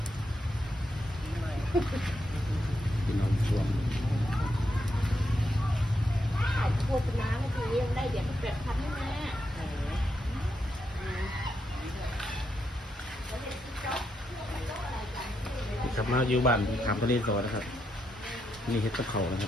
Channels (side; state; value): both; normal; correlation 0.82